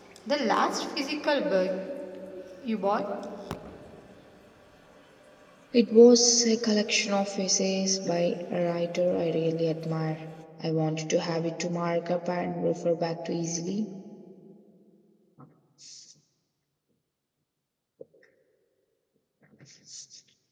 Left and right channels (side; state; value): both; identical; correlation 1.00